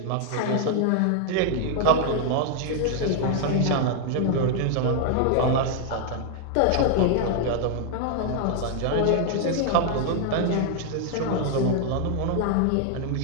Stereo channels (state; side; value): different; both; correlation 0.00